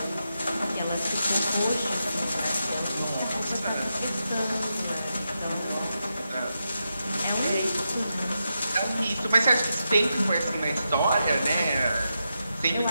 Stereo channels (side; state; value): both; inverted; correlation -0.87